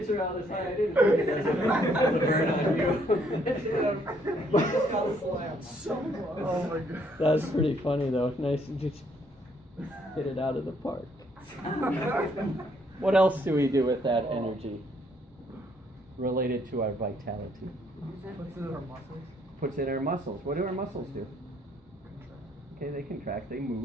out this high. I didn't think it as a burn on you. Oh my god. That's pretty funny though. Nice to just hit it out of the park. What else do we do with that energy related to our vitality? What's in our muscles? Puts in our muscles. What do our muscles do? Okay, they contract, they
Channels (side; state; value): both; normal; correlation 0.68